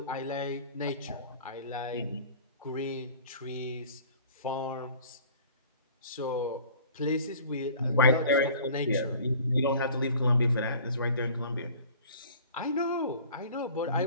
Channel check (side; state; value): both; inverted; correlation -0.46